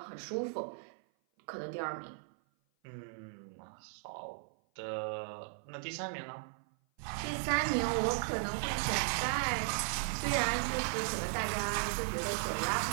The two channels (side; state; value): left; silent; 53 dB below the other